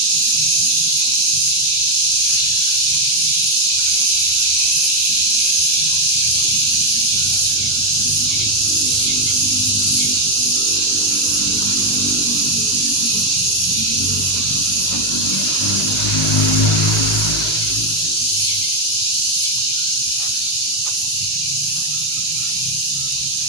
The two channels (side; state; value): both; normal; correlation 0.03